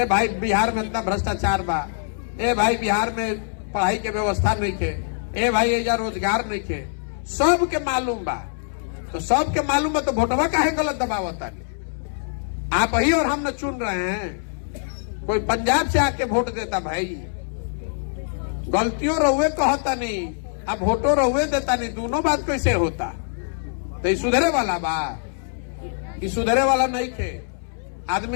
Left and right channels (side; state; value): right; silent; 63 dB below the other